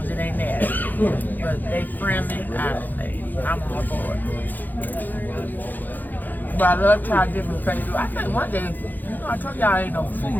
as it ain't nasty. But they friendly, I'm all for it. But I love trying different places. I think one day, you know, I told y'all I ain't no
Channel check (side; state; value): right; late; 0.086 ms